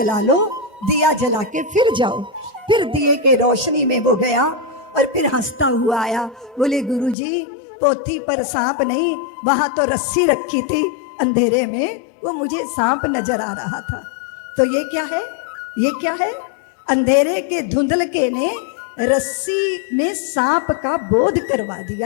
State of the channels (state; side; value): drops out; right; at 7.2 s